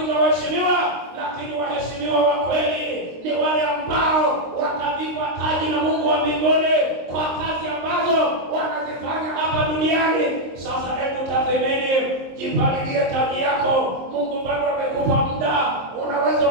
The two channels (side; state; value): left; late; 23 ms